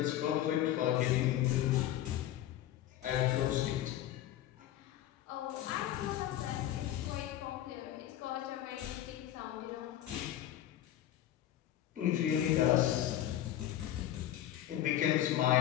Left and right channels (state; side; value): quieter; right; 12.5 dB